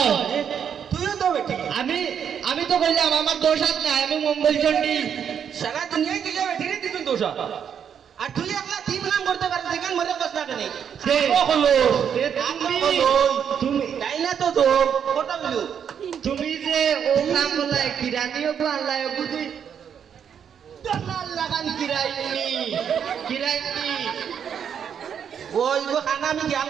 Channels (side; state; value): left; quieter; 8.0 dB